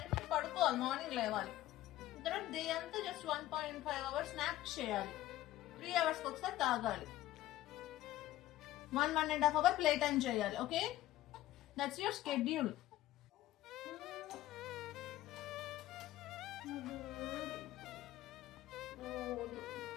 పడుకోవాలి, మార్నింగ్ లేవాలి. తర్వాత డే అంతా జస్ట్ 1.5 అవర్స్ స్నాప్ చేయాలి, 3 అవర్స్కి ఒకసారి తాగాలి, 1.5 అవర్ ప్లే టైం చేయాలి. Okay, that's your schedule.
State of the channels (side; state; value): right; quieter; 14.8 dB